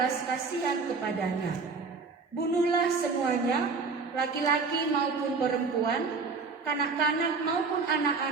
kasihan kepadanya. Bunuhlah semuanya, laki-laki maupun perempuan, kanak-kanak maupun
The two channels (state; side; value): quieter; left; 4.6 dB